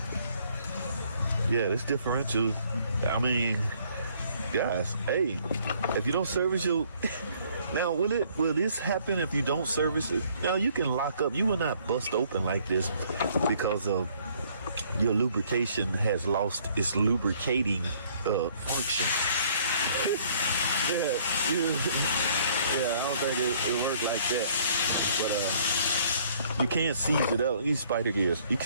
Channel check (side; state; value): both; inverted; correlation -0.62